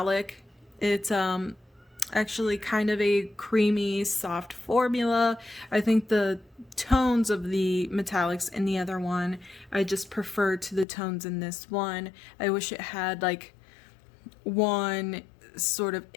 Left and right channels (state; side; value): drops out; right; at 10.9 s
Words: It's actually kind of a creamy soft formula. I think the tones of the metallics in the other one I just prefer to the tones in this one. I wish it had like one sort of